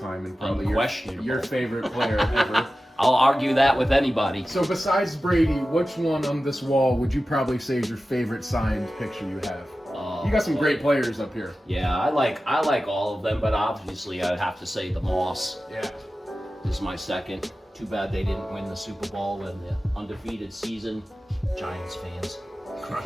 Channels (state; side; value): normal; both; correlation 0.94